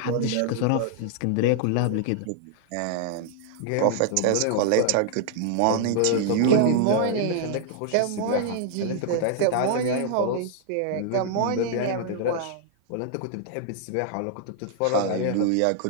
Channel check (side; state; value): both; different; correlation 0.00